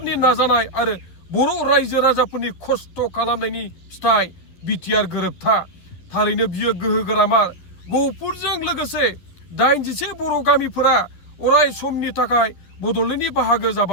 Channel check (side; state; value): right; late; 11 ms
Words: नाजानाय आरो बर' रायजो राजाफोरनि खस्थ' खालामनायनि फिथाइ BTR गोरोबथा। थारैनो बियो गोहोगोरामार। गहपुरजों लोगोसे 81 बर' गामिफोरा अराय समनि थाखाय बड'लेण्डनि बाहागो